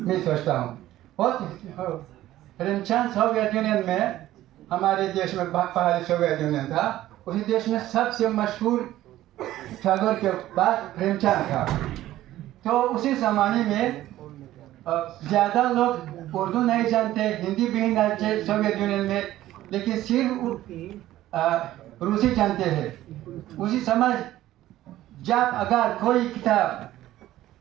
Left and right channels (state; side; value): quieter; left; 14.5 dB